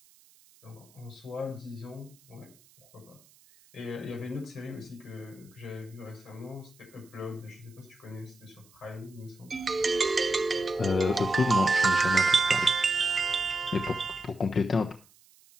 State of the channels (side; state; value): right; noise; hiss, 28 dB below the sound